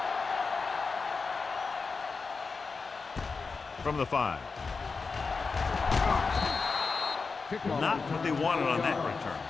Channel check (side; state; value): right; quieter; 4.6 dB